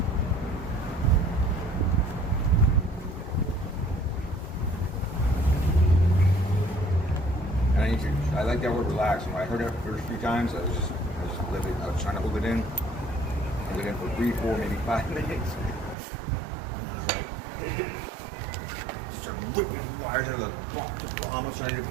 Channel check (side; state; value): left; drops out; at 16.0 s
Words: And I like that word relax. When I heard it the first few times, I was trying to hold it in. Hold it in for 3, 4, maybe 5 minutes. Just started whipping the wires out of the bomb. I was trying to